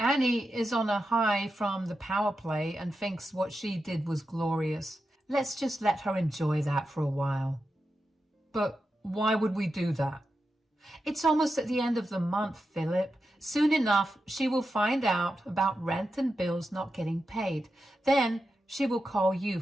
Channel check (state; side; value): normal; both; correlation 0.89